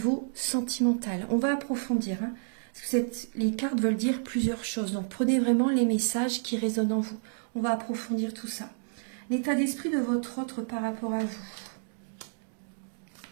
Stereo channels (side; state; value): left; silent; digital silence